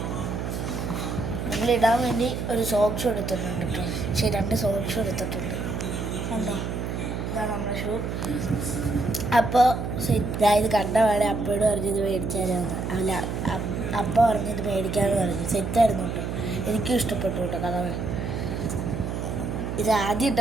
നമ്മളിടാൻ വേണ്ടി ഒരു സോക്സ് എടുത്തിട്ടുണ്ട് കേട്ടോ. 2 സോക്സ് എടുത്തിട്ടുണ്ട് ഉണ്ടോ. ഇതാണ് നമ്മുടെ ഷൂ. അപ്പോൾ ഇത് കണ്ട പാടെ അപ്പോഴും പറഞ്ഞത് മേടിച്ചാലാന്ന്. അല്ല, അപ്പ പറഞ്ഞത് മേടിക്കാമെന്ന് പറഞ്ഞു. സെറ്റായിരുന്നു കേട്ടോ. എനിക്കും ഇഷ്ടപ്പെട്ടു കേട്ടോ കളർ. ഇത് ആദ്യം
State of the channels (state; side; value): noise; right; hum, 4 dB below the sound